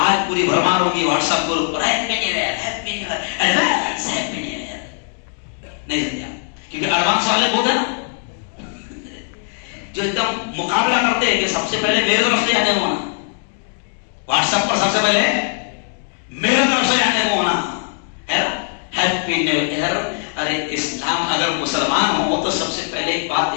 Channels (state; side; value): silent; right; 59 dB below the other